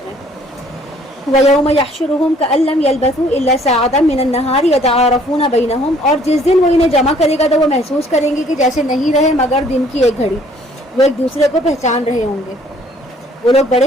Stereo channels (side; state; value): both; normal; correlation 0.59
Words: رہے ہیں۔ وَيَوْمَ يَحْشُرُهُمْ كَأَن لَّمْ يَلْبَثُوا إِلَّا سَاعَةً مِّنَ النَّهَارِ يَتَعَارَفُونَ بَيْنَهُمْ، اور جس دن وہ انہیں جمع کرے گا تو وہ محسوس کریں گے کہ جیسے نہیں رہے مگر دن کی ایک گھڑی، وہ ایک دوسرے کو پہچان رہے ہوں گے۔ وہ لوگ